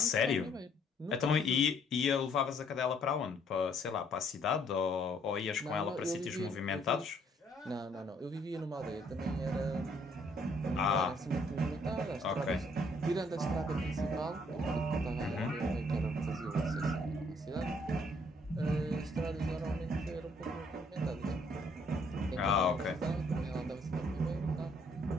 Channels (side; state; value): both; normal; correlation 0.65